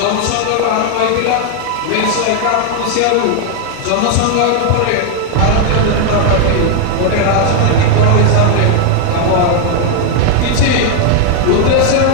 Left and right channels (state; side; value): different; both; correlation 0.00